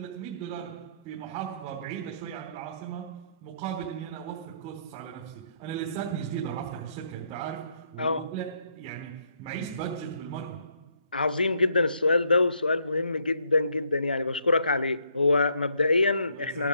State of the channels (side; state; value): both; inverted; correlation -0.71